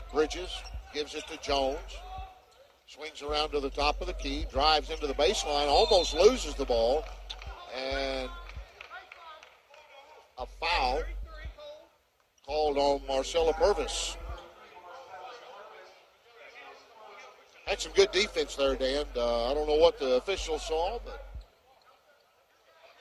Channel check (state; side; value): identical; both; correlation 1.00